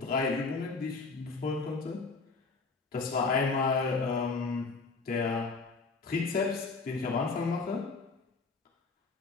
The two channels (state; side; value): quieter; right; 4.1 dB